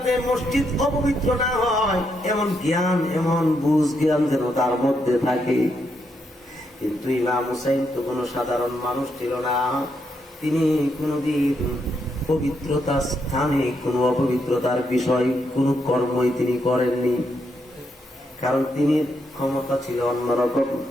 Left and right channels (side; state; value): both; normal; correlation 0.79